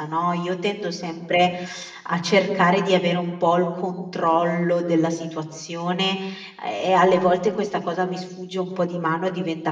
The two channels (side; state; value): both; identical; correlation 1.00